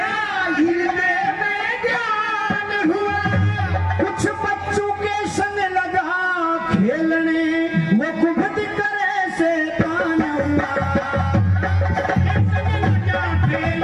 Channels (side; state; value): both; identical; correlation 1.00